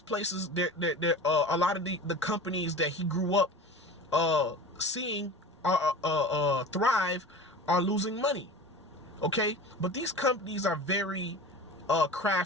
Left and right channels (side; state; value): both; normal; correlation 0.35